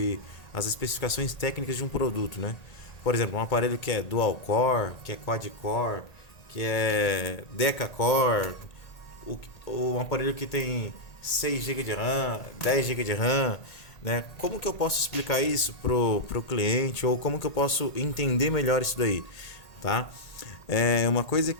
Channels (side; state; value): right; late; 1.8 ms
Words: as especificações técnicas de um produto, né? Por exemplo, um aparelho que é dual core, que é quad core, que é deca-core, um aparelho que tem 6 GB de RAM, 10 GB de RAM, né? Como que eu posso explicar isso pro cliente ou como que eu posso entender melhor isso daí, tá? Uma coisa